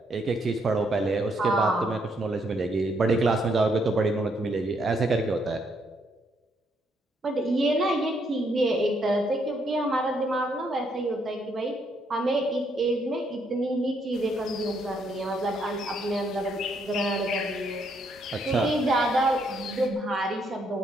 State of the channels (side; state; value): both; normal; correlation 0.73